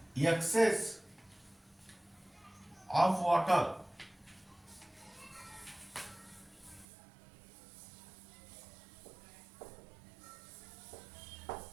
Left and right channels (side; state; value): left; drops out; at 6.9 s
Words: excess of water